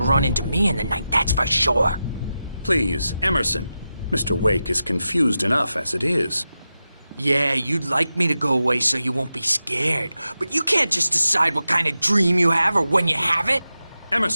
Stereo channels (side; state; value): both; inverted; correlation -0.91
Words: run into me in the night, that's for sure. Please, Emerson. Mr. Wake is confused enough as it is. Yeah, you'd like me to go away so you won't be scared. But you can't just decide what kind of dream you have or when you have it.